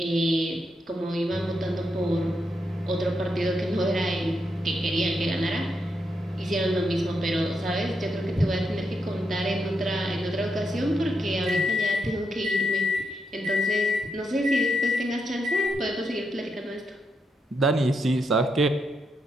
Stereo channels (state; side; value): normal; both; correlation 0.82